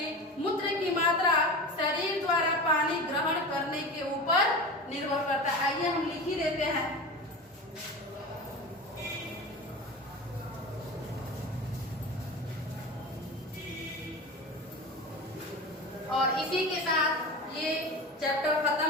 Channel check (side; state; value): both; normal; correlation 0.29